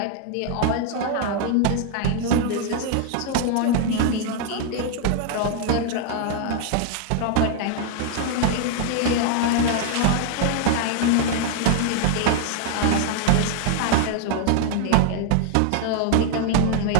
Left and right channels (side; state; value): both; different; correlation 0.00